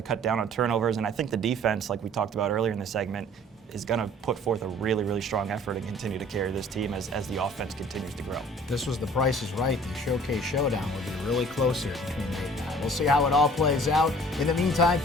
to cut down on turnovers, and I think the defense, like we talked about earlier in the segment, is going to put forth a really, really strong effort and continue to carry this team as the offense continues to grow. This was the Price is Right. The Showcase Showdown will be really close here between Nate and I. We'll see how it all plays out. In the meantime,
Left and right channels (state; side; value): normal; both; correlation 0.51